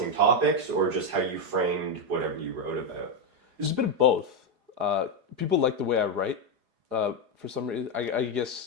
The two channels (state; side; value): late; left; 4.8 ms